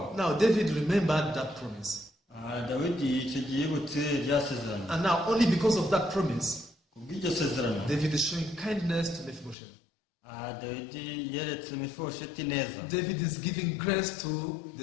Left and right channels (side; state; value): right; drops out; at 9.6 s